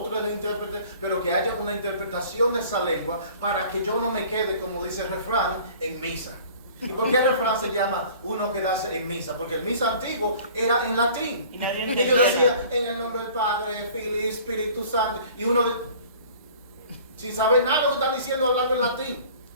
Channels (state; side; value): inverted; both; correlation -0.48